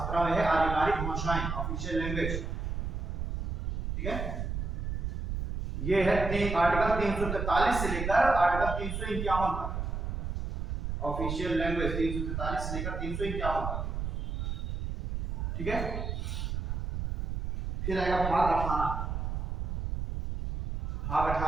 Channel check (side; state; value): right; noise; rumble, 3 dB below the sound